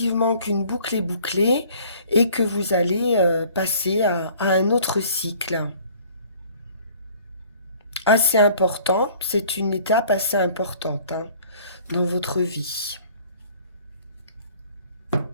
qu'une boucle est bouclée et que vous allez passer à un autre cycle. Assez important, c'est une étape assez importante, hein, dans votre vie.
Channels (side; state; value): both; inverted; correlation -0.53